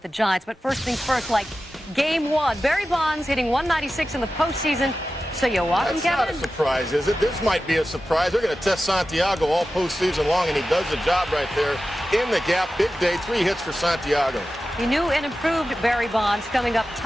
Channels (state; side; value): normal; both; correlation 0.93